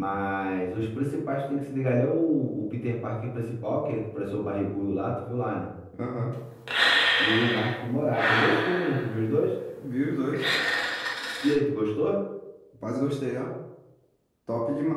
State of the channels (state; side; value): identical; both; correlation 1.00